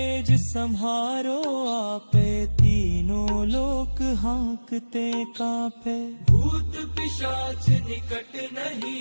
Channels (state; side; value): inverted; both; correlation -1.00